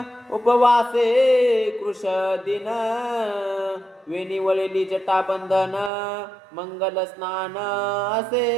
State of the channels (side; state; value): left; drops out; at 5.9 s